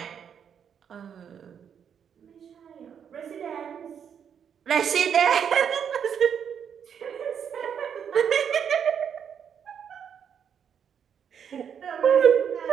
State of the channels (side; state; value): left; quieter; 7.9 dB